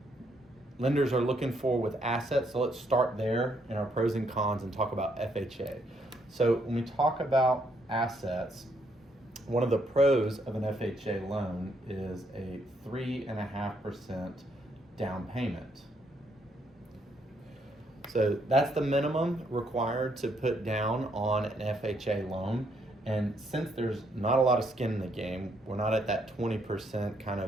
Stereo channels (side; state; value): both; normal; correlation 0.73